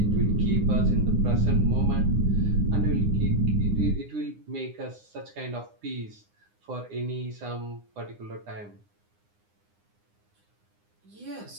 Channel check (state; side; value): late; left; 9.8 ms